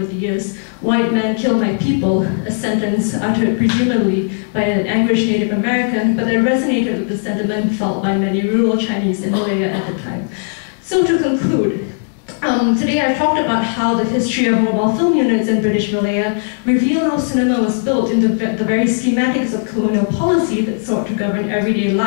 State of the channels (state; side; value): silent; right; digital silence